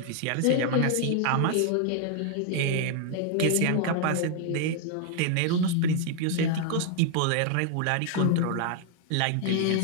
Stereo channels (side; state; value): both; different; correlation 0.00